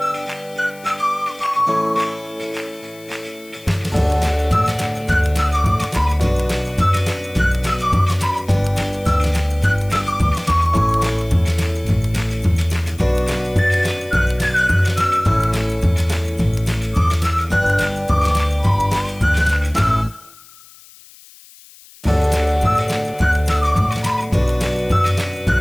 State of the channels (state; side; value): noise; left; hiss, 23 dB below the sound